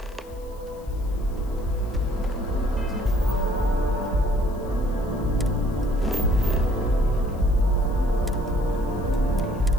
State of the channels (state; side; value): noise; left; hiss, 27 dB below the sound